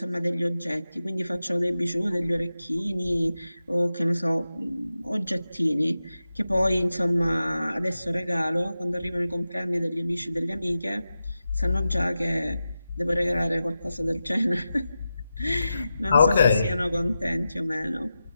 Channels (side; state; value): both; inverted; correlation -0.92